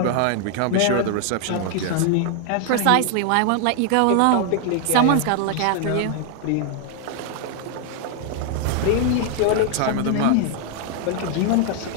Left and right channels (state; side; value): different; both; correlation 0.00